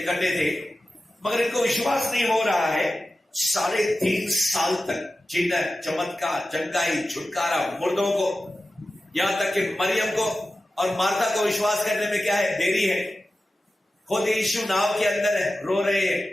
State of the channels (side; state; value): both; normal; correlation 0.94